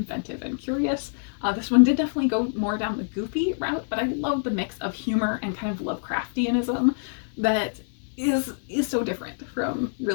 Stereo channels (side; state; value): right; silent; 59 dB below the other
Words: and curious. This one did definitely go more down the goofy route, but I love the mix of humor and kind of Lovecraftianism that is so different from